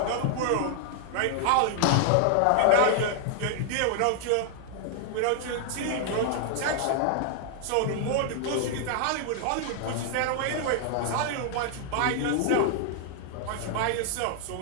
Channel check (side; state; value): both; different; correlation 0.00